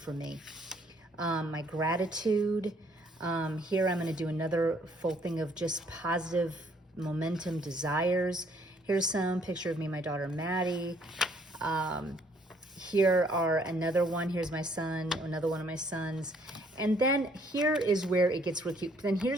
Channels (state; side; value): normal; both; correlation 0.65